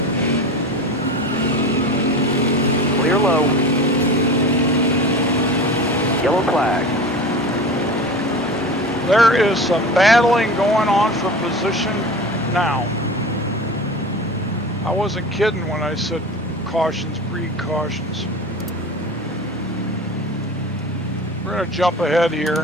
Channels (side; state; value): both; normal; correlation 0.32